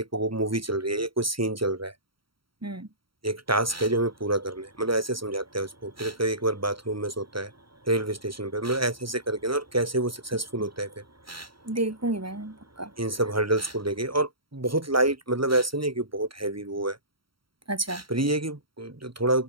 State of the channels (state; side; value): late; left; 0.74 ms